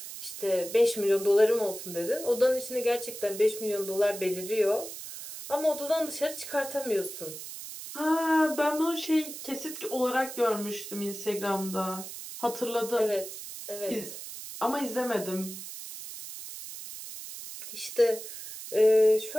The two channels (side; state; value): right; noise; hiss, 10 dB below the sound